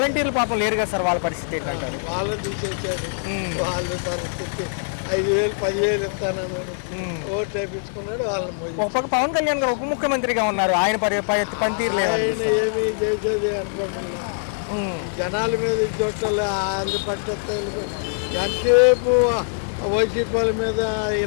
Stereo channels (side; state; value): right; silent; digital silence